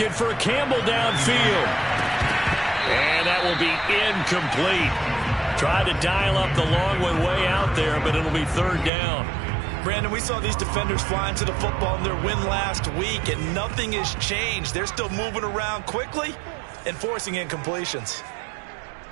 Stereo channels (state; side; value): drops out; left; at 8.9 s